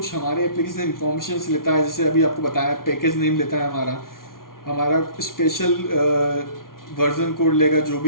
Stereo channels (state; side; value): late; right; 0.92 ms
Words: हमारे एप्लीकेशन इन्फॉर्मेशन लेता है, जैसे अभी आपको बताया पैकेज नेम लेता है, हमारा स्पेशल वर्जन कोड लेगा, जो